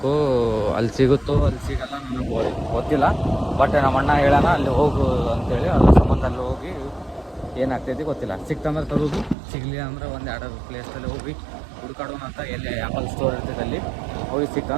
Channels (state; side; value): drops out; left; at 9.3 s